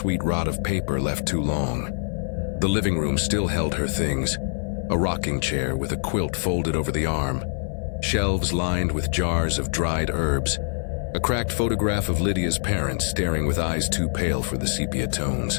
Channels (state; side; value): silent; right; 57 dB below the other